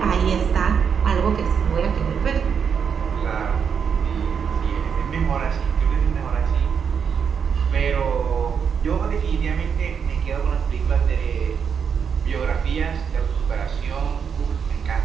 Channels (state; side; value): quieter; left; 6.8 dB